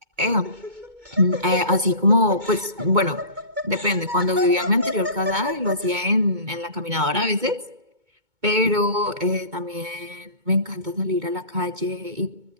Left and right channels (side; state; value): left; late; 2.2 ms